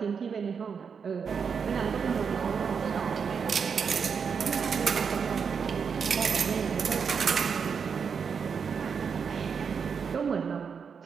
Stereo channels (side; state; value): left; quieter; 6.3 dB